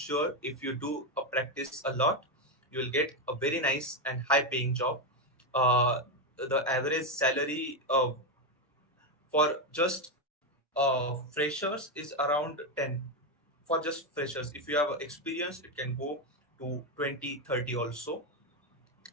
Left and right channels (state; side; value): normal; both; correlation 0.08